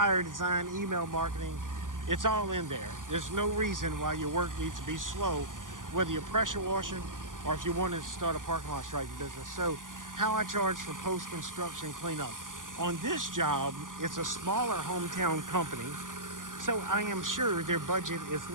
design, email marketing. It's all in there. There's no reason why your work needs to be slow, whether you're pressure washing or if you wanted to start a parking lot striping business. So how I charge for post-construction cleanup. On this job, it's a smaller hometown company, so I am sure their budget is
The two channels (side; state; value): left; late; 0.88 ms